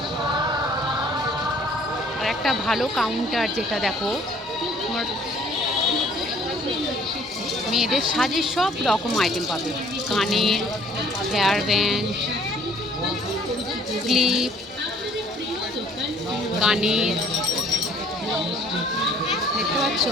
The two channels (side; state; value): both; normal; correlation 0.57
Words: আর একটা ভালো কাউন্টার, যেটা দেখো তোমার মেয়েদের সাজের সব রকম আইটেম পাবে। কানের, হেয়ার ব্যান্ড, ক্লিপ, কানের, দেখতে পাচ্ছ,